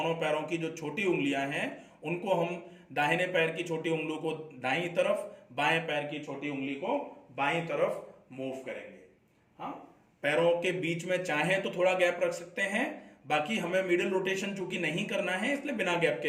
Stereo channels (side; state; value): both; identical; correlation 1.00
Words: पैरों की जो छोटी उंगलियां हैं उनको हम दाहिने पैर की छोटी उंगली को दाईं तरफ, बाएं पैर की छोटी उंगली को बाईं तरफ मूव करेंगे। हाँ, पैरों के बीच में चाहे तो थोड़ा गैप रख सकते हैं, बाकी हमें मिडिल रोटेशन चूंकि नहीं करना है इसलिए बिना गैप के